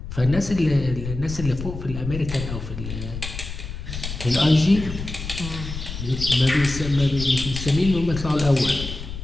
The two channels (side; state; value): left; noise; rumble, 8 dB below the sound